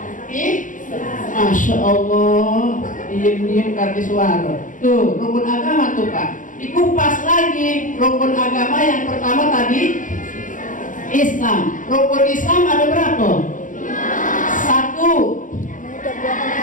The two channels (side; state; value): right; late; 0.38 ms